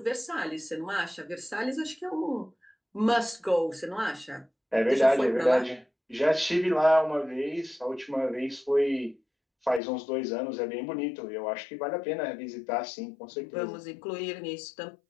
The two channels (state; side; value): drops out; right; at 9.8 s